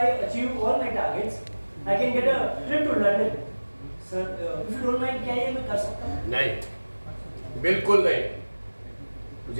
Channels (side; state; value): both; inverted; correlation -1.00